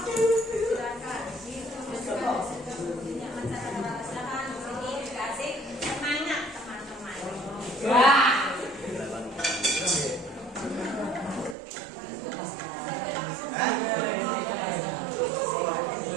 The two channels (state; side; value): drops out; left; at 11.6 s